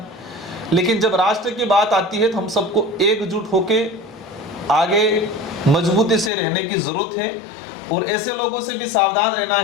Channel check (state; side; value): drops out; right; at 6.3 s